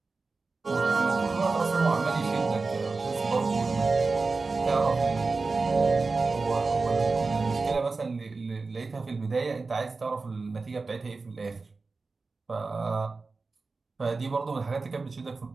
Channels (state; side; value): quieter; left; 4.0 dB